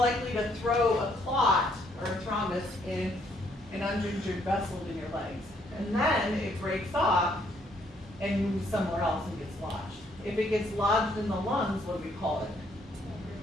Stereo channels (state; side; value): normal; both; correlation 0.69